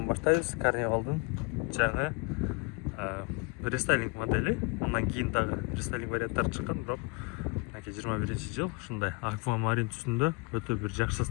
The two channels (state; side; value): quieter; right; 28.7 dB